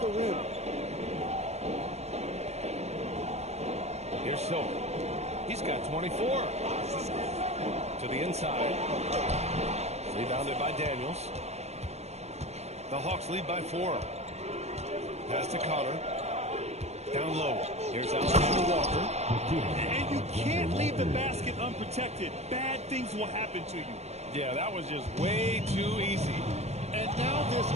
the rim. Here's Silver. He's got 24. To the inside. Rebounded by Daniels. The Hawks lead by 4. Pass to Connor. Down low. Here's Alexander Walker. And you can't leave the basket unprotected. Bad things will happen to you. Yeah, that was just way too easy. And now this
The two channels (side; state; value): left; late; 0.31 ms